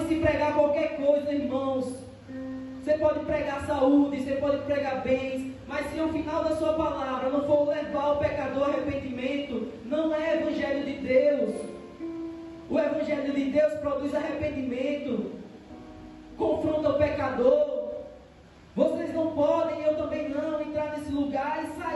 pregar qualquer coisa, irmãos. Você pode pregar saúde, você pode pregar bens, mas se ao final da sua palavra não for levar o pecador ao arrependimento, não é Evangelho de Deus. O Evangelho de Deus produz arrependimento, confronta o pecador. Vocês não podem, eu também não, entrar nesse lugar e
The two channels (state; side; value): identical; both; correlation 1.00